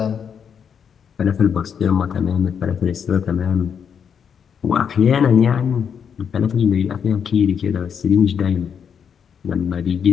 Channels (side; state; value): right; quieter; 7.4 dB